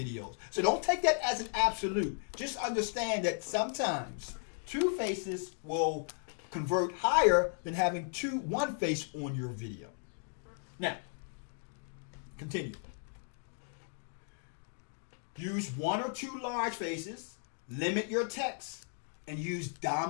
So don't take that as an absolute. Just understand that sometimes 2 faces will convert higher than having 1 face on your video. Now, continue. Use 1 or 2 large faces, limit your text, and use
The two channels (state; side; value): silent; right; 54 dB below the other